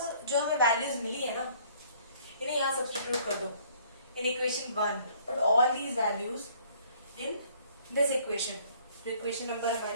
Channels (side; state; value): both; inverted; correlation -0.59